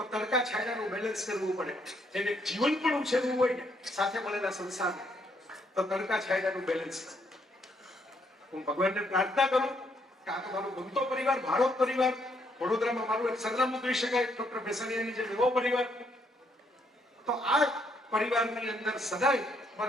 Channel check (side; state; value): both; normal; correlation 0.72